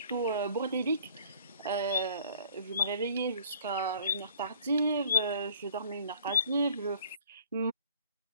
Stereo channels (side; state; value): both; inverted; correlation -0.55